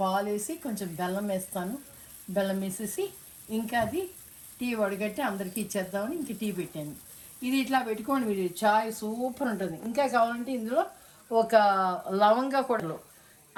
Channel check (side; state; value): both; identical; correlation 1.00